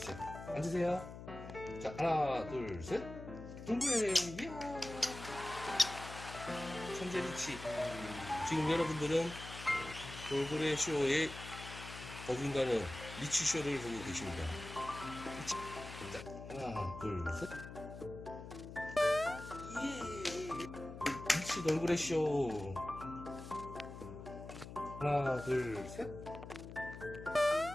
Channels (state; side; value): noise; left; hum, 12 dB below the sound